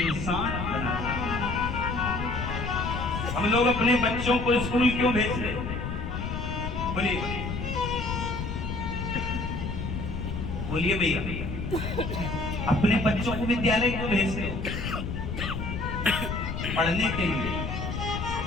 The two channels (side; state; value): left; noise; rumble, 4 dB below the sound